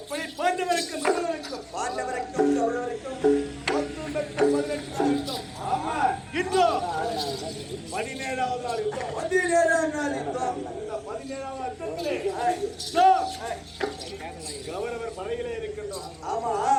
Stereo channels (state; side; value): identical; both; correlation 1.00